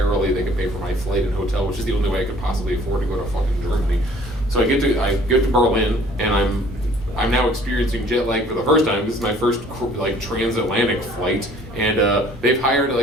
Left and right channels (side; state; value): both; normal; correlation 0.55